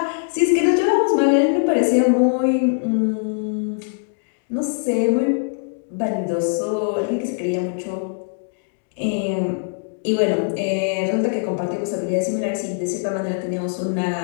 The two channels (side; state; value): right; silent; digital silence